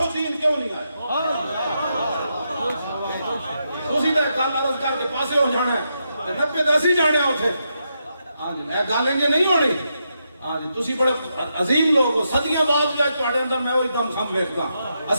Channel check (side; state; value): both; inverted; correlation -0.83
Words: دین کیوں نہیں آیا تسی تے گل عرض کر کے پاسے ہو جانا ہے 90 دسی جانے اوتھے ہاں جی اے گل انج نہیں ہونی ہاں جی تسی بڑے عظیم لوگ ہو صدیاں بعد بھی تواڈے اندر میں وہی دم خم ویکھدا